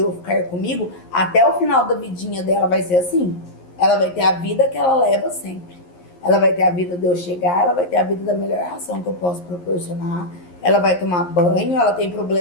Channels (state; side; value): late; right; 11 ms